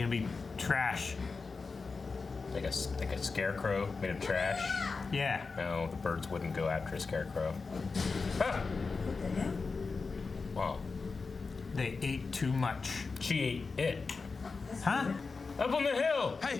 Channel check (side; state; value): right; quieter; 4.4 dB